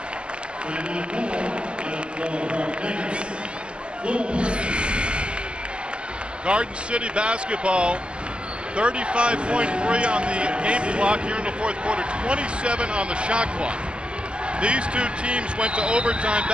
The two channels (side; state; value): left; late; 0.052 ms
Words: Garden City basketball, 35.3 on the game clock here in the fourth quarter, 27 on the shot clock. These two teams went to overtime